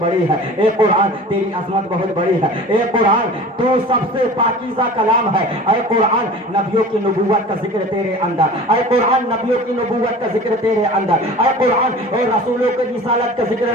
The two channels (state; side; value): normal; both; correlation 0.40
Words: بڑی ہے، اے قرآن تیری عظمت بہت بڑی ہے، اے قرآن تو سب سے پاکیزہ کلام ہے، اے قرآن نبیوں کی نبوت کا ذکر تیرے اندر، اے قرآن نبیوں کی نبوت کا ذکر تیرے اندر، اے قرآن اور رسولوں کی رسالت کا